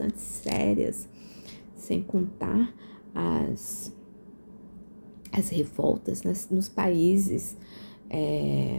sérias, sem contar as revoltas nos países,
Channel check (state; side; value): inverted; both; correlation -1.00